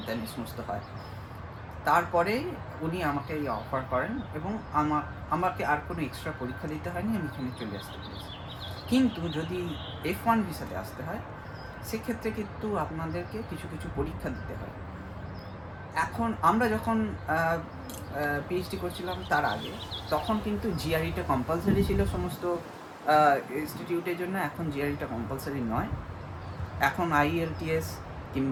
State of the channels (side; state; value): both; identical; correlation 1.00